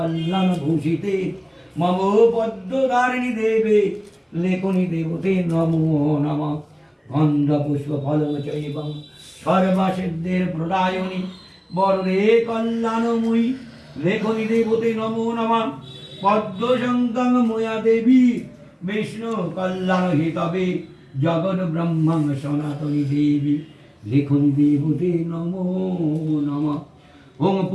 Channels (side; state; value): both; identical; correlation 1.00